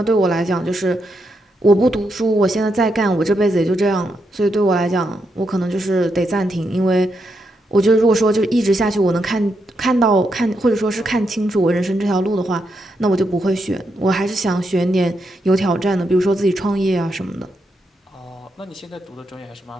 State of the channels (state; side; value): normal; both; correlation 0.82